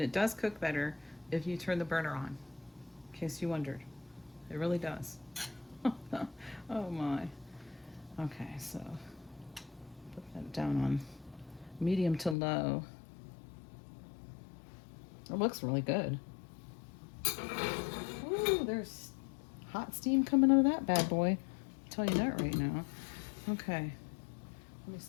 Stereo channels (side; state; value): right; drops out; at 12.4 s